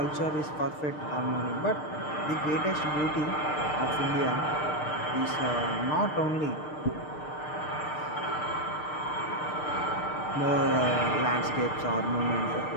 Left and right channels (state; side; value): late; right; 6.6 ms